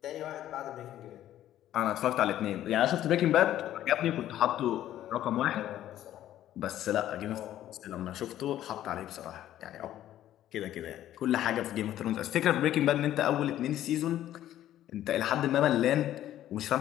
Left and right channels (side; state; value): right; quieter; 12.5 dB